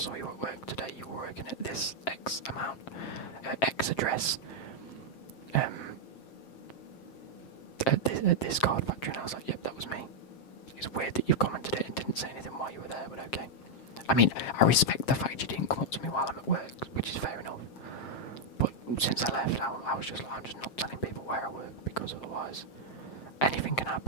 you at work today, you were working at this X amount, X address, at this Card Factory, and I was like, yep, that was me. It's weird that you've commented it and didn't say anything while you were there, but okay. I mean, I respect the fact you didn't come up to me while I'm at work, which is fair enough. But since I left, I was just like, I'm just not telling people where I work, because otherwise anything can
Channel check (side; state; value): right; late; 7.5 ms